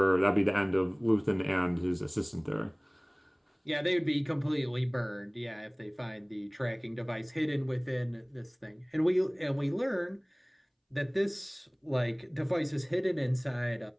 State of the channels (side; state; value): both; identical; correlation 1.00